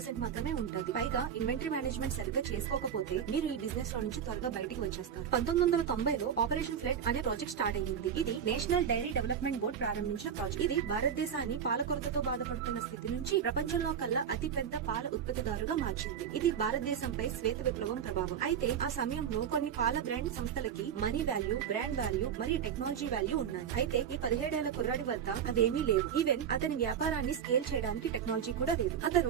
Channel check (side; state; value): left; quieter; 8.1 dB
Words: మాత్రమే ఉంటుంది. పైగా ఇన్వెంటరీ మేనేజ్మెంట్ సరిగ్గా చేసుకోకపోతే మీరు ఈ బిజినెస్ లో నుంచి త్వరగా బయటికి వచ్చేస్తారు. 1990లో ఆపరేషన్ ఫ్లడ్ అనే ప్రాజెక్ట్ స్టార్ట్ అయ్యింది. ఇది నేషనల్ డైరీ డెవలప్మెంట్ బోర్డ్ ప్రారంభించిన ప్రాజెక్ట్. ఇది భారతదేశాన్ని పాల కొరతతో బాధపడుతున్న స్థితి నుంచి ప్రపంచంలో కల్లా అతి పెద్ద పాల ఉత్పత్తిదారుగా మార్చింది. ఇది భారతదేశంపై శ్వేత విప్లవం ప్రభావం. అయితే ఆ సమయంలో కొన్ని పాల బ్రాండ్ సంస్థలకి మనీ వాల్యూ, బ్రాండ్ వాల్యూ మరియు టెక్నాలజీ వాల్యూ ఉన్నాయి. అయితే ఈ 17 ఏళ్ల కుర్రాడి వద్ద అవేమీ లేవు. ఈవెన్ అతని వ్యాపారాన్ని స్కేల్ చేయడానికి టెక్నాలజీ కూడా లేదు.